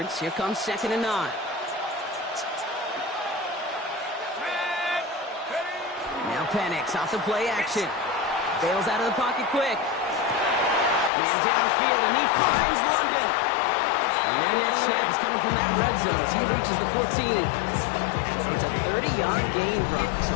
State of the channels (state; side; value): drops out; right; at 11.1 s